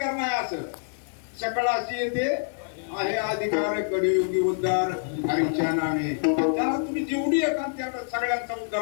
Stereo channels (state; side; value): silent; right; 61 dB below the other